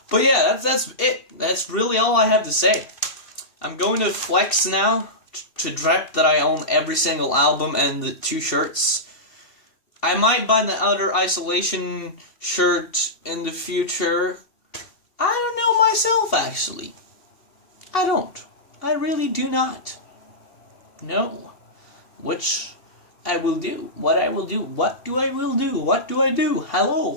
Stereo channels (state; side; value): late; right; 2.7 ms